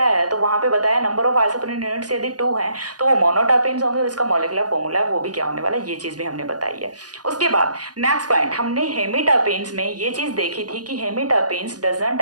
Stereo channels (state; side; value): late; left; 0.69 ms